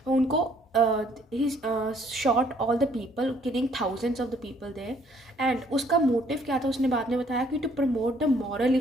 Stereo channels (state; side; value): normal; both; correlation 0.64